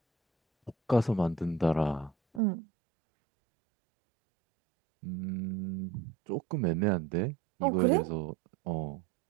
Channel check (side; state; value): left; drops out; at 2.4 s